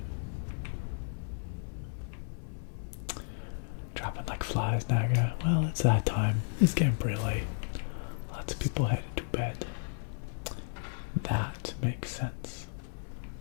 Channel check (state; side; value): silent; right; 56 dB below the other